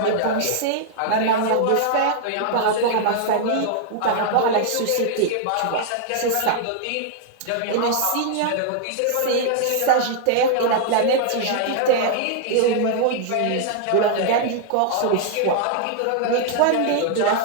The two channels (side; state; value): both; different; correlation 0.00